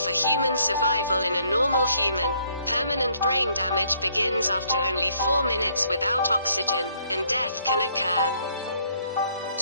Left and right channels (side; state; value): both; inverted; correlation -0.67